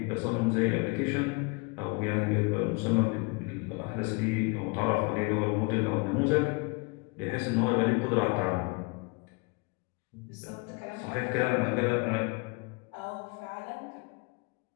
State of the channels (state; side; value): quieter; right; 29.4 dB